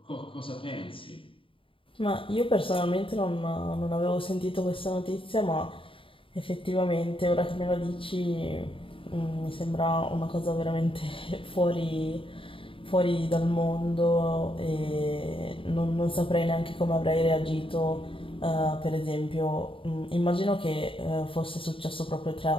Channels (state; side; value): late; right; 0.25 ms